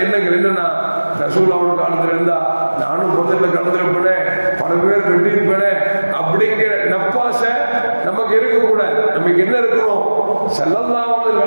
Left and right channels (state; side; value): inverted; both; correlation -1.00